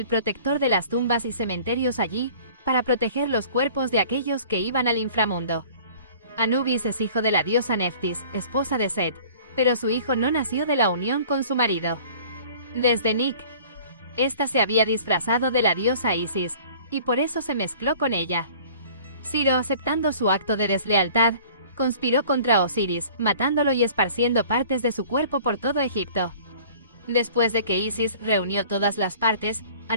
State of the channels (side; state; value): both; inverted; correlation -0.47